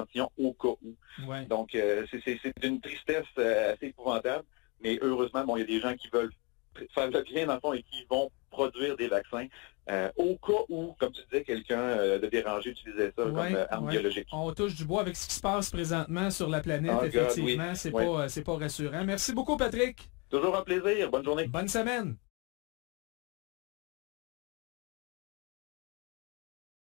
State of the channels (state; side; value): quieter; right; 28.3 dB